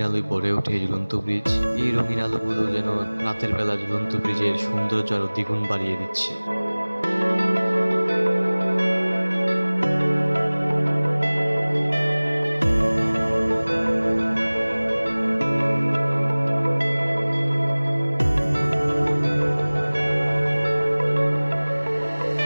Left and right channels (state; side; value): inverted; both; correlation -1.00